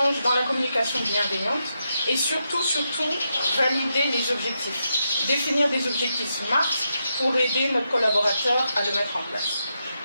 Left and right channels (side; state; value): both; inverted; correlation -0.84